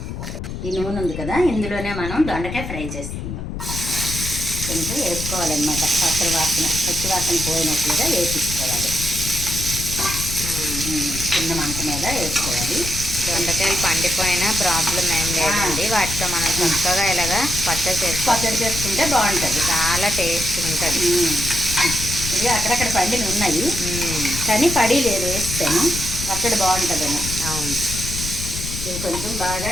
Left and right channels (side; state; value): left; noise; rumble, 6 dB below the sound